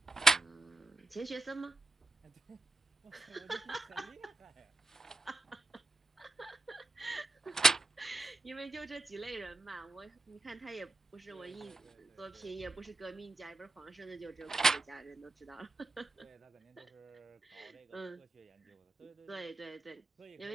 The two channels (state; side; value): quieter; left; 3.1 dB